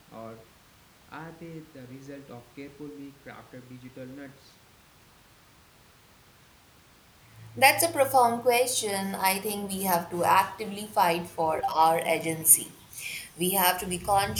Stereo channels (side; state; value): both; identical; correlation 1.00